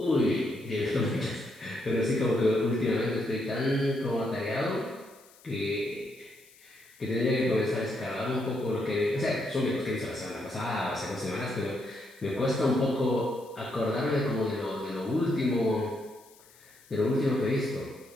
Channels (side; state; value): left; noise; hiss, 26 dB below the sound